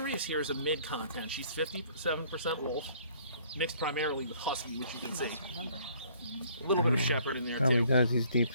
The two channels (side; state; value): both; inverted; correlation -0.59